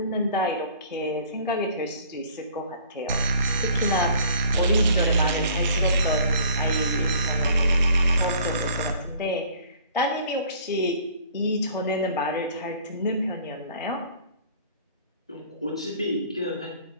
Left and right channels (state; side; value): inverted; both; correlation -0.52